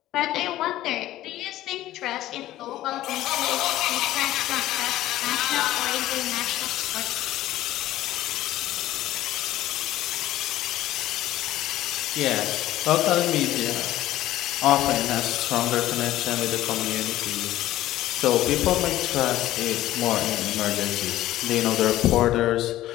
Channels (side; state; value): right; quieter; 14.7 dB